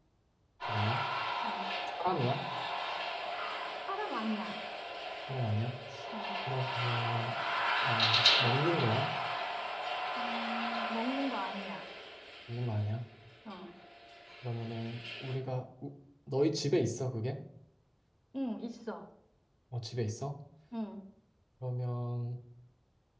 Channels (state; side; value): identical; both; correlation 1.00